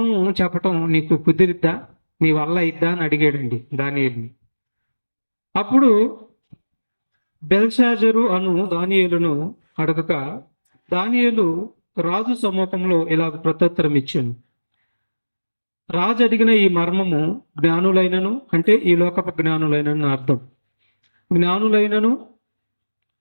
చెప్పటం నీకు కుదిరిద్దా, నీ వల్ల అయిద్దా అని అడిగాడండి దానియేలుని. అప్పుడు బెల్షాజరు అను దానియేలును అడగక దానియేలు రాజు సమ్మూఖంలో ఇలాగ ప్రత్యుత్తరం ఇచ్చాను. రాజు అడిగిన ఈ మర్మము జ్ఞానులైనను, అంటే ఈ లోకపు జ్ఞానులైనను అర్థం, జ్ఞానులైనను,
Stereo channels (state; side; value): inverted; both; correlation -1.00